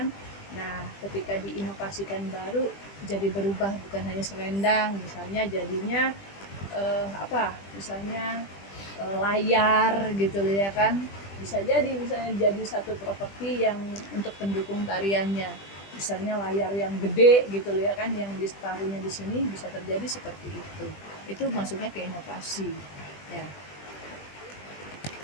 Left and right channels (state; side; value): late; right; 20 ms